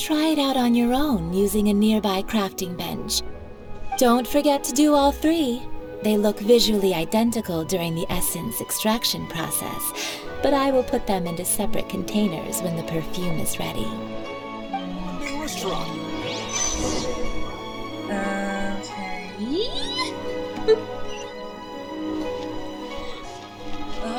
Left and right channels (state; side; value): identical; both; correlation 1.00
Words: it out on your own using a nearby crafting bench. Don't forget to do all three. They look visually identical during the essence extraction process, but I will put them into separate containers when the perfume is ready. Restaurant. Okay.